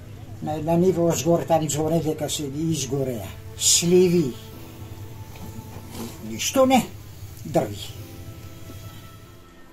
На ниво озгоре там зоре дека се изгореа. Сливи. Ништо не, дрви.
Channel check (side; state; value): both; identical; correlation 1.00